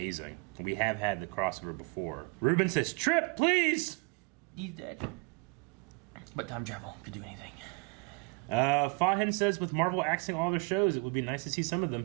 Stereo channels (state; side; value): quieter; left; 30.7 dB